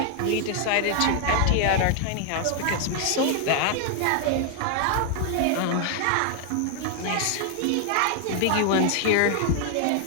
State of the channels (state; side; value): different; both; correlation 0.00